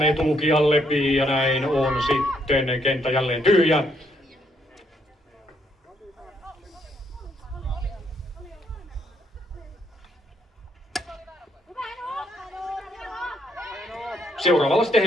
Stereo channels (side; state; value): both; normal; correlation 0.72